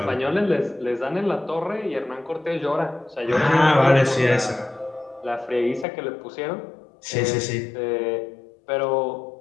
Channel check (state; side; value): drops out; right; at 5.9 s